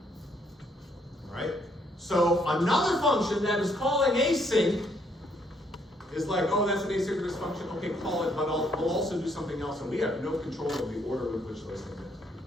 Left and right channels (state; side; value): normal; both; correlation 0.69